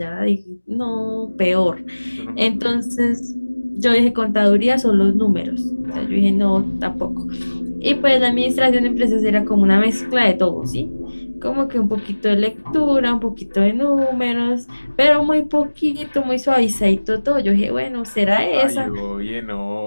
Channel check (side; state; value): both; inverted; correlation -1.00